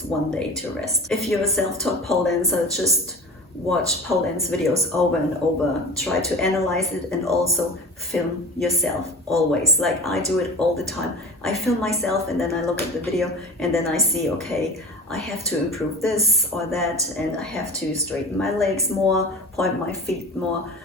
1 day to rest. If you're a self-taught pole dancer, just watch Pauline's videos over and over, try to analyze it, and also film yourself always. Like I do it all the time. I film myself and then I look at the video and then I see, okay, I have to improve this or that, and I have to straighten my legs more, point my feet more,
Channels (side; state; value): both; normal; correlation 0.34